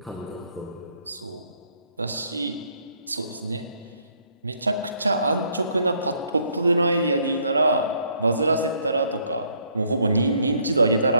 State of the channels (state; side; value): inverted; both; correlation -0.67